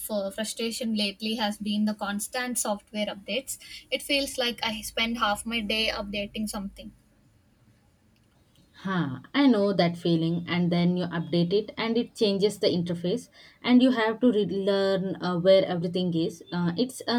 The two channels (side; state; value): both; identical; correlation 1.00